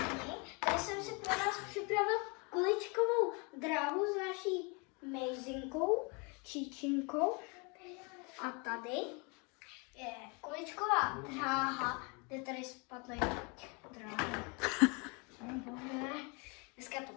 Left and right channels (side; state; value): right; quieter; 31.4 dB